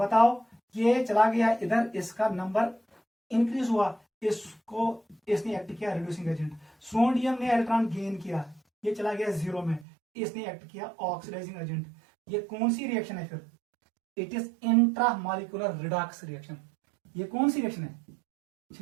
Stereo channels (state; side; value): drops out; left; at 9.9 s